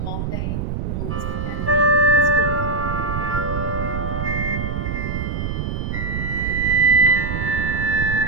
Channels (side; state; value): right; noise; rumble, 3 dB below the sound